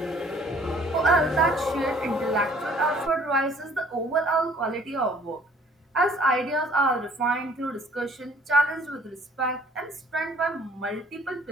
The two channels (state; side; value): normal; both; correlation 0.56